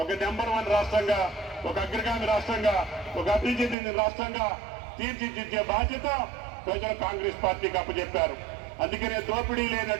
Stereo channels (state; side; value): drops out; left; at 3.8 s